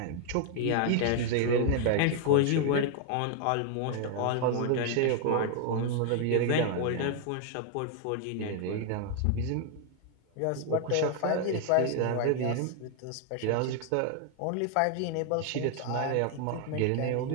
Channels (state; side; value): different; both; correlation 0.00